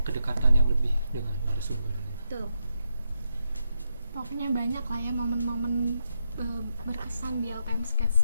kedekatan yang lebih dengan narasumber. Betul. Pokoknya banyak lah ya momen-momen berkesan di LPM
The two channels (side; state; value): both; inverted; correlation -0.82